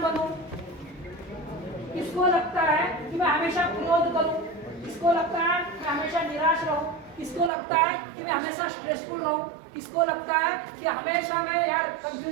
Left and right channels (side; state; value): left; drops out; at 7.5 s